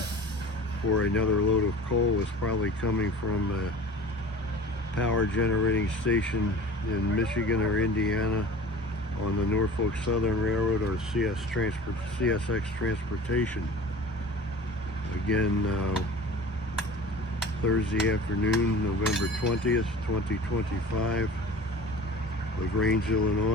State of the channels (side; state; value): both; normal; correlation 0.40